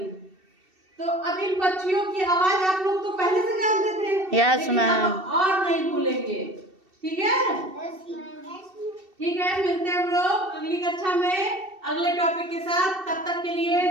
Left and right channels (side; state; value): left; late; 2.7 ms